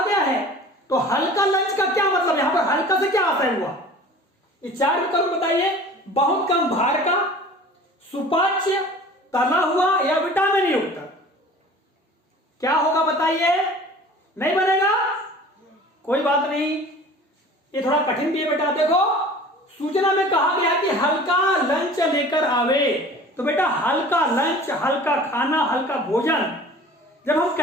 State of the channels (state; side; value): normal; both; correlation 0.44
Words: गया है। तो हल्का लंच का क्या मतलब? यहां पर हल्का से क्या आशय हुआ? ये 4 विकल्प बताइए। बहुत कम भार का, सुपाच्य, तला हुआ या विटामिन युक्त। क्या होगा बताइए? नहीं बनेगा? कोई बात नहीं, ये थोड़ा कठिन भी है बेटा। देखो, सूचना में कहा गया कि हल्का लंच लेकर आवे, तो बेटा हल्का लंच, हल्का खाना, हल्का भोजन जब हम